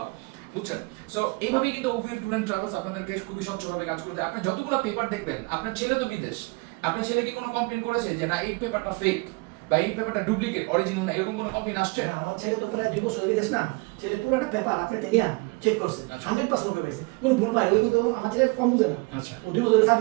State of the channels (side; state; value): left; quieter; 28.2 dB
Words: বুঝছেন? সো এইভাবেই কিন্তু ওভিয়ন ট্যুর এন্ড ট্রাভেলস আপনাদেরকে খুবই স্বচ্ছভাবে কাজ করতে। আপনি যতগুলো পেপার দেখবেন, আপনার ছেলে তো বিদেশ, আপনার ছেলে কি কোনো কমপ্লেন করেছে যে না এই পেপারটা ফেক বা এই পেপারটা ডুপ্লিকেট, অরিজিনাল না, এরকম কোনো কমপ্লেন আসছে? আমার ছেলে তো প্রায় 2 বছর বিদেশ না, ছেলে পুরোটা পেপার আপনাকে নিয়ে চেক করছে, 100% ওকে পাইছে, কোনো ভুল পায় ওই কিন্তু আমার ছেলে কম বুঝে না। আচ্ছা, ও 2 বছর